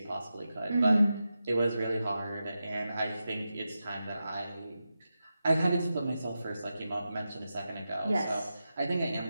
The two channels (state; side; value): inverted; both; correlation -0.91